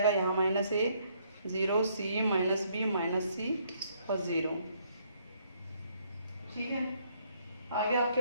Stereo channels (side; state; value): both; inverted; correlation -0.69